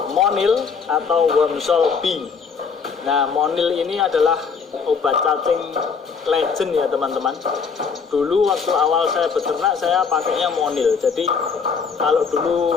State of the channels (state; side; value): quieter; right; 5.7 dB